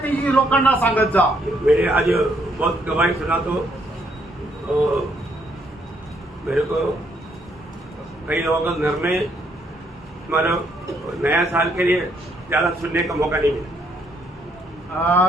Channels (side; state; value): both; normal; correlation 0.71